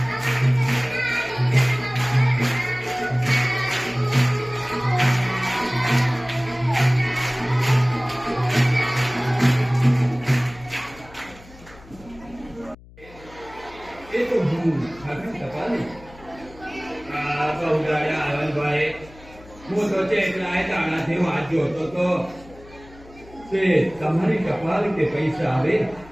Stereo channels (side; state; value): left; noise; hum, 22 dB below the sound